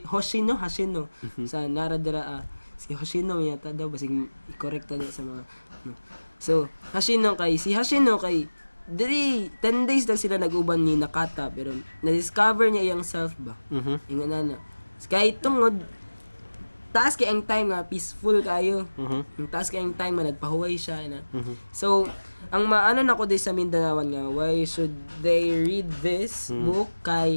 Hoshino sa Naradara si Hoshino yata daw basig i-correct daw sa mga so Hoshino kay diri 10 days lang sila nag-uban ni Nakata pero na-discover niya iyang self ba. Ingon na. Kay tungod taas kay ang time nga peaceful kayo. Yung taas kay ang time nga nagpahuway siya na. So ang maano nako di sa Mindanawan nga why should they read this book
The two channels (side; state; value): both; inverted; correlation -1.00